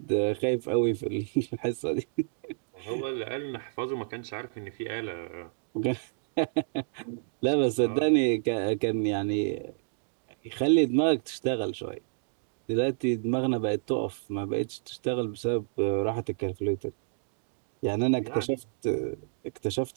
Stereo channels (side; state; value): left; silent; digital silence